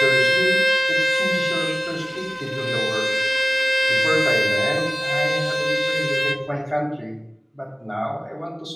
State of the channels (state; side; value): identical; both; correlation 1.00